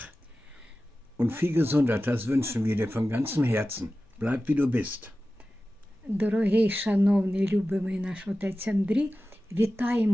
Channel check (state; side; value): normal; both; correlation 0.95